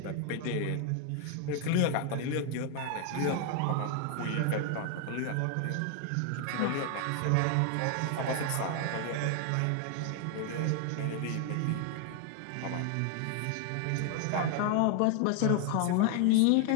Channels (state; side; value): different; both; correlation 0.00